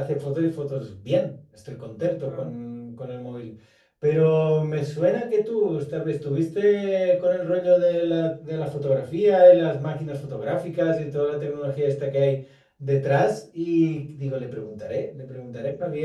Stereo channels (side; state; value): both; identical; correlation 1.00